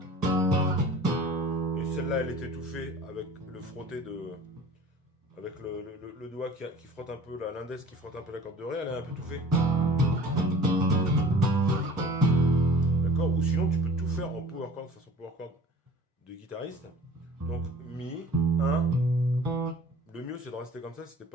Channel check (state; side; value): normal; both; correlation 0.45